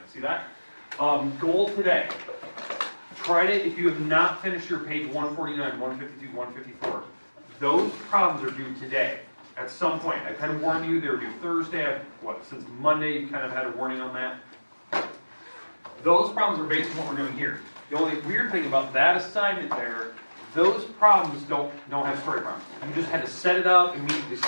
see that. Goal today, try to, if you have not finished your page 149, 152, 154, those problems are due today. At some point, I kind of warned you, they're due Thursday. Since Monday, you kind of had a warning on that. Those problems are based on what we're doing here. The only weird thing about that assignment there, those problems don't have story problems. You just had to set it up, immediately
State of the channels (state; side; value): inverted; both; correlation -1.00